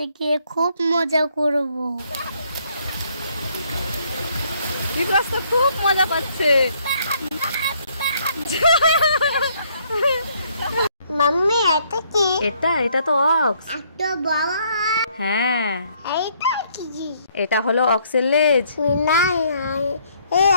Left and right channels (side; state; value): both; inverted; correlation -0.68